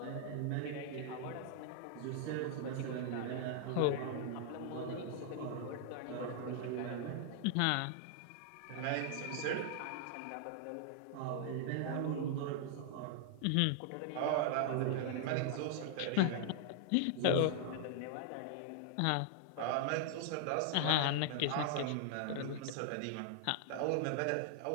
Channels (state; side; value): different; both; correlation -0.01